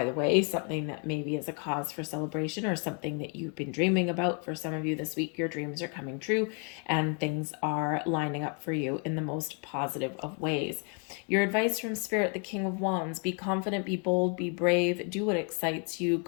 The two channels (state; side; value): quieter; right; 38.4 dB